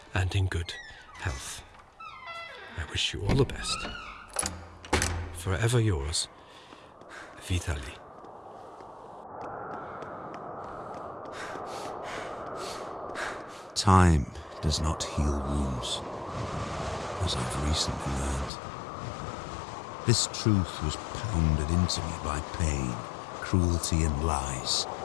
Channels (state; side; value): drops out; right; at 18.5 s